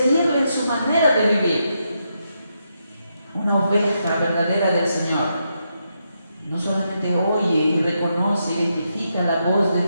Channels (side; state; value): both; inverted; correlation -0.82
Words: en su manera de vivir. Una oveja verdadera del Señor no solamente oye y reconoce, identifica la voz